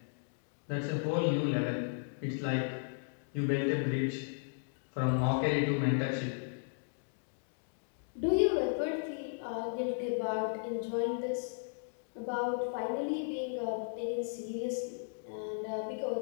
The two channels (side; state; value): right; silent; digital silence